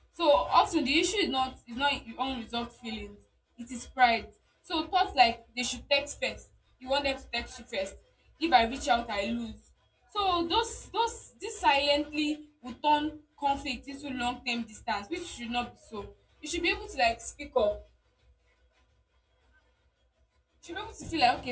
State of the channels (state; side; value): identical; both; correlation 1.00